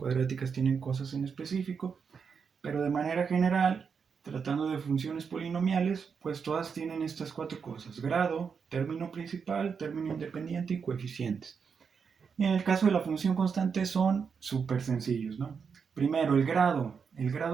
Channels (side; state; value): left; quieter; 6.1 dB